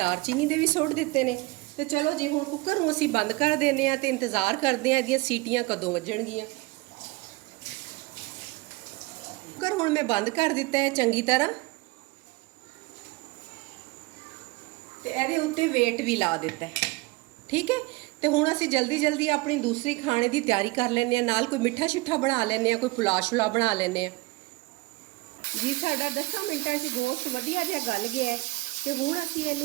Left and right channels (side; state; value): left; quieter; 23.0 dB